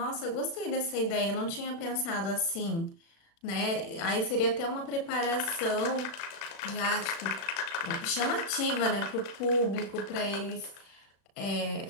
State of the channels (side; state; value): right; late; 36 ms